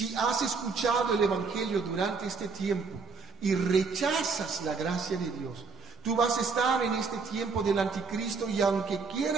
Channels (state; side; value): quieter; left; 4.8 dB